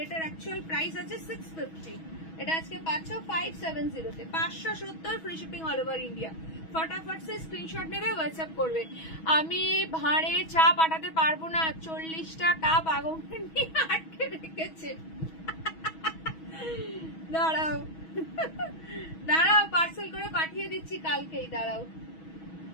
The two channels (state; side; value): late; right; 6.2 ms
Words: এটার অ্যাকচুয়াল প্রাইস আছে 650, এটা আজকে পাচ্ছ 570 তে। 570 free shipping all over India. ফটাফট সে স্ক্রিনশট নেবে, হোয়াটসঅ্যাপ করবে। আমি ভাঁড়ে চা পাঠাতে পারবো না, 40টা কাপ আগুন নিয়ে আটকে রেখেছে। দাঁড়াও দাঁড়াও, পার্সেল করে পাঠিয়ে দিচ্ছি কালকেই, দাঁড়াও।